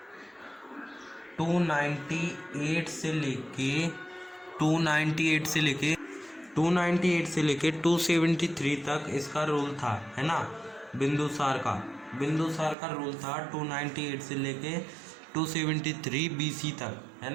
298 से लेके 273 तक इसका रूल था, है ना। बिंदुसार का रूल था 298 से लेके 273 BC तक, है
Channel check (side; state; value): left; drops out; at 12.8 s